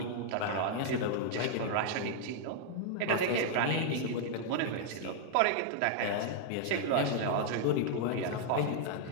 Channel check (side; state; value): both; different; correlation -0.01